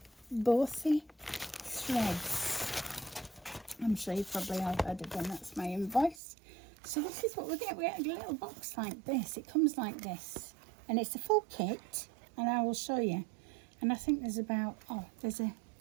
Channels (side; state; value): left; drops out; at 6.2 s